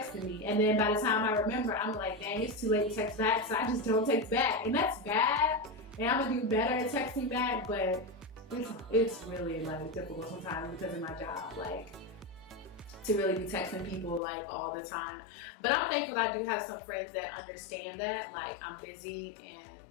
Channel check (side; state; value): right; drops out; at 14.2 s